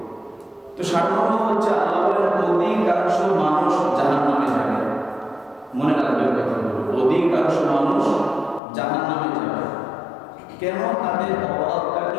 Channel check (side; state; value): right; drops out; at 8.6 s